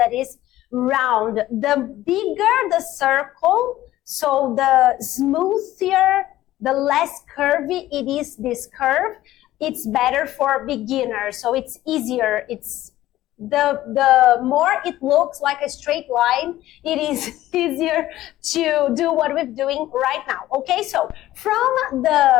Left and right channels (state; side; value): quieter; right; 14.9 dB